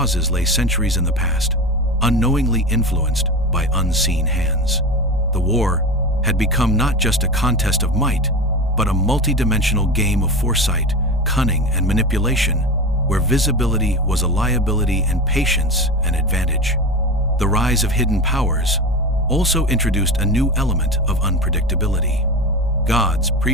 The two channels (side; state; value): both; normal; correlation 0.26